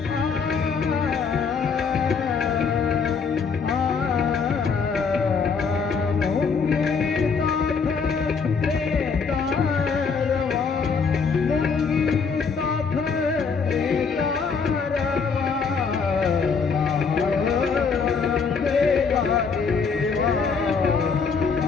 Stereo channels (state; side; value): quieter; right; 5.5 dB